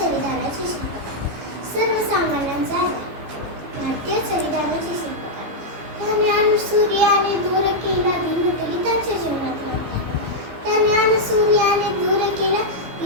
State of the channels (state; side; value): late; left; 15 ms